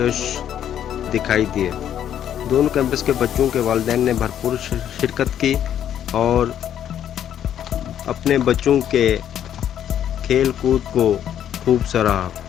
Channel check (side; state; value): right; quieter; 10.1 dB